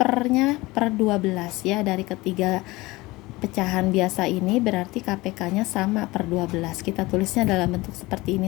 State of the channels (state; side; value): quieter; right; 21.0 dB